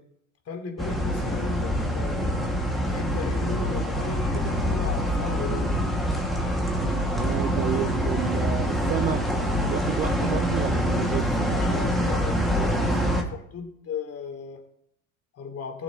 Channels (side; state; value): both; normal; correlation 0.56